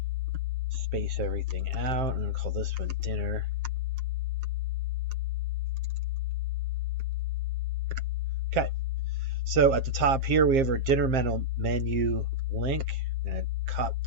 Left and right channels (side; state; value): left; late; 7.5 ms